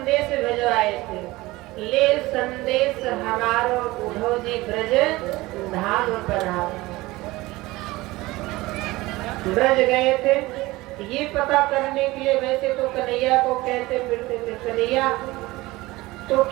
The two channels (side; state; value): left; quieter; 19.8 dB